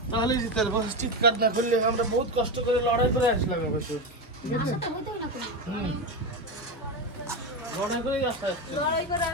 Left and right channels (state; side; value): normal; both; correlation 0.15